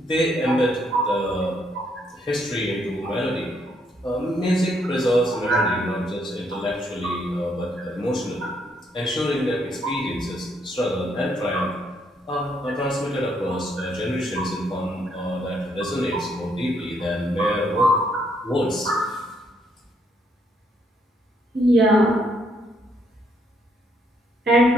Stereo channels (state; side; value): normal; both; correlation 0.72